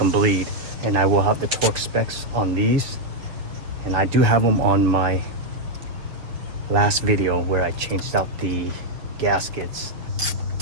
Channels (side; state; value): left; late; 7.0 ms